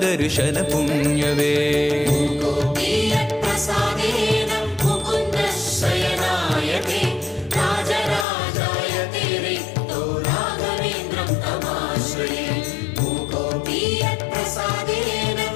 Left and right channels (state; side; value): drops out; right; at 8.2 s